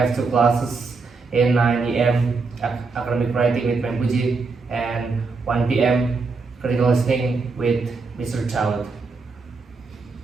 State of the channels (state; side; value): quieter; left; 4.3 dB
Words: two classes in 9 a.m. academic writing with Mempuji and 1 p.m. critical listening with Mr. Child.